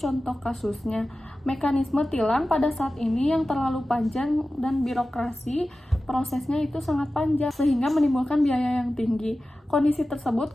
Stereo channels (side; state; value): both; normal; correlation 0.95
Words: kasusnya, mekanisme tilang pada saat ini yang terlalu panjang dan birokrasi prosesnya itu sangat panjang sehingga menimbulkan biaya yang tinggi. Kondisi tersebut